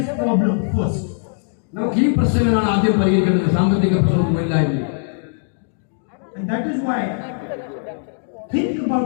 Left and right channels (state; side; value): silent; right; digital silence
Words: problem first. നമുക്ക് ഈ പ്രശ്നങ്ങളാണ് ആദ്യം പരിഹരിക്കേണ്ടത്, സാമ്പത്തിക പ്രശ്നവും തൊഴിലില്ലായ്മയും. And that is why think about